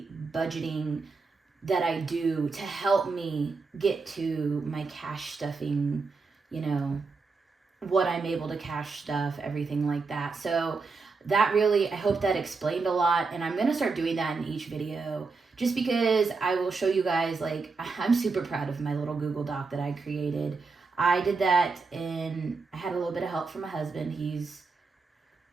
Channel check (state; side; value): quieter; left; 4.3 dB